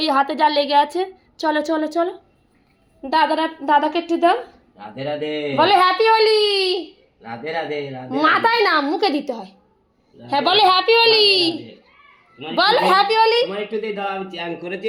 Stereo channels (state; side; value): identical; both; correlation 1.00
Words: হাতে যা লেগে আছে। চলো চলো চলো, দাদাকে একটু দাও। রাধে রাধে বলে হ্যাপি হোলি। রাধে রাধে রাধে মাথায় না, মুখে দিতে হয়। হ্যাঁ, বলে হ্যাপি হোলি, বলো হ্যাপি হোলি। তোমার একটু দিয়ে দাও, আমি চ্যান করেছি,